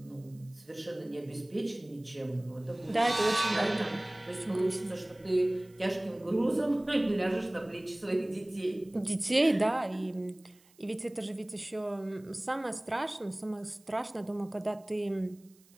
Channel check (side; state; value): right; noise; hiss, 29 dB below the sound